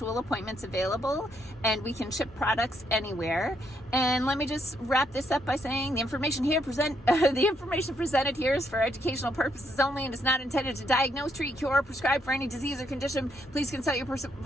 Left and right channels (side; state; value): both; normal; correlation 0.75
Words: appointments available, and we can ship products anywhere. And let me just wrap this up by saying the information presented here is for educational purposes only and is not intended to diagnose, treat, cure, or prescribe for any disease or condition. Please consult your